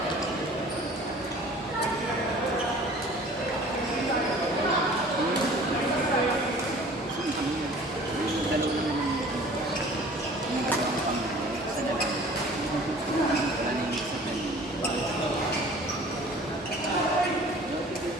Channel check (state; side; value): normal; both; correlation 0.47